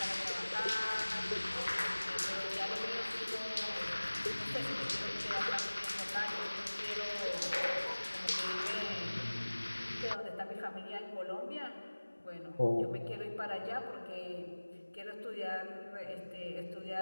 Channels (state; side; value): inverted; both; correlation -1.00